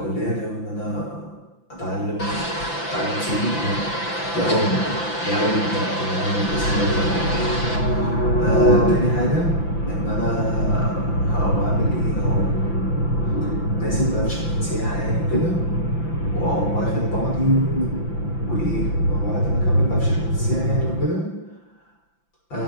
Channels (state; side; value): late; right; 5.9 ms